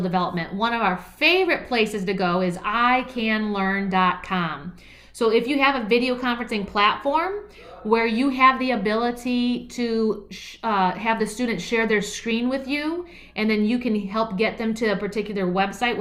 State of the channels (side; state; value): both; identical; correlation 1.00